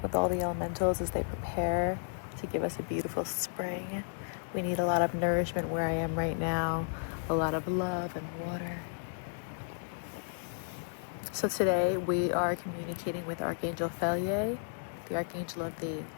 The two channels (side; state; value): right; silent; digital silence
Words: with all the elementals as they prepare to give us a beautiful spring. We need a lot of nourishment where I am right now, a lot of love and water. So today we are communicating with Archangel Felier, the Archangel of the